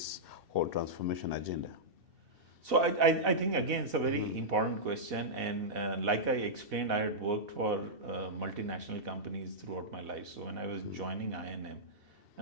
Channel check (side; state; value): left; late; 2.7 ms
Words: whole transformation agenda? So I think, again, it's a very important question. And like I explained, I had worked for multinational companies throughout my life. So when I was joining I&M,